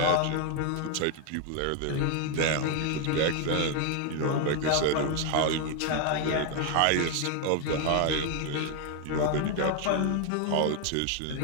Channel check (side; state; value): both; different; correlation 0.01